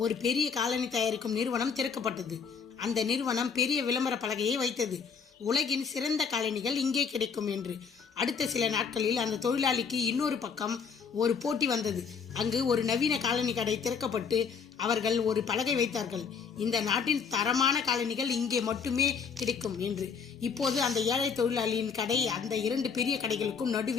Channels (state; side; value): quieter; right; 6.1 dB